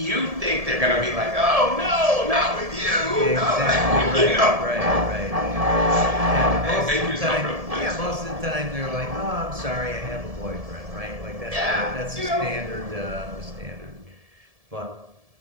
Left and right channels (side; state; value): left; late; 1.7 ms